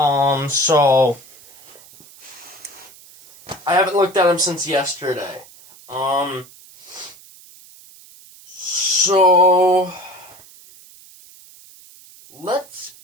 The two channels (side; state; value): right; noise; hiss, 23 dB below the sound